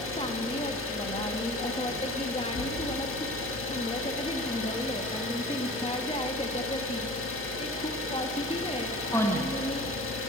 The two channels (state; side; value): normal; both; correlation 0.40